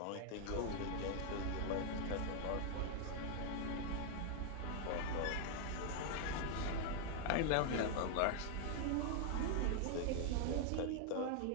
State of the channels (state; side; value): different; both; correlation 0.00